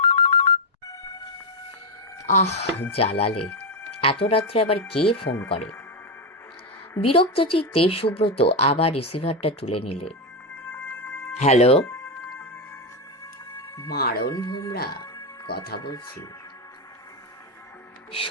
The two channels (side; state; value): both; normal; correlation 0.08